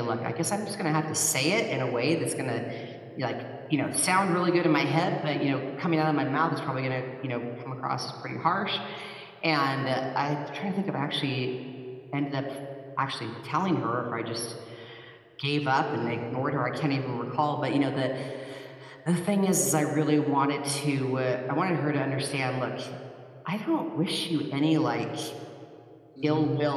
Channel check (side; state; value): both; identical; correlation 1.00